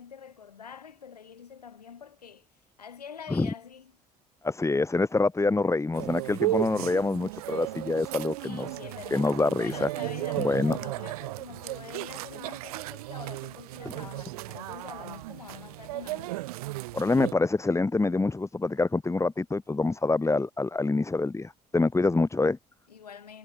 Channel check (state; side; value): normal; both; correlation 0.77